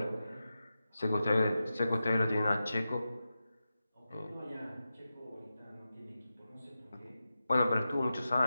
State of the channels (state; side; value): inverted; both; correlation -0.92